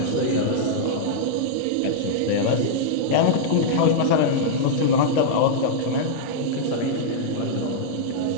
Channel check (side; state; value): both; different; correlation -0.02